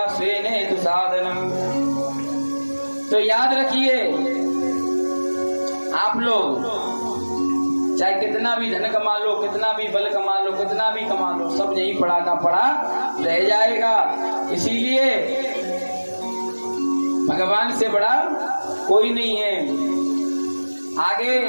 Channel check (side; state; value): both; inverted; correlation -1.00